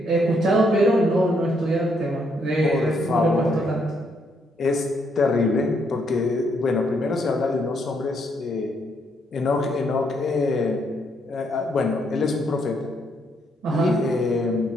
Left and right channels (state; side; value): normal; both; correlation 0.73